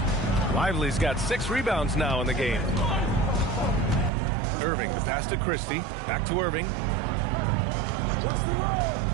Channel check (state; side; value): drops out; left; at 4.1 s